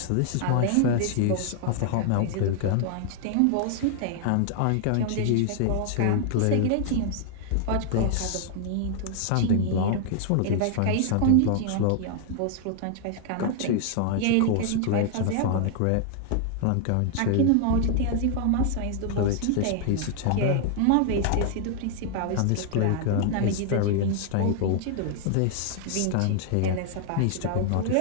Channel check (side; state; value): both; different; correlation 0.00